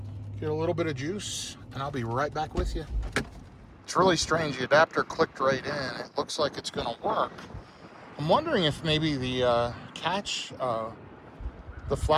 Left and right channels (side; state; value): both; identical; correlation 1.00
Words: get a little bit of juice, and I'll be right back with you. It's really strange. The adapter clicked right in. It looks like it's gonna work. I'm wondering if maybe the catch, the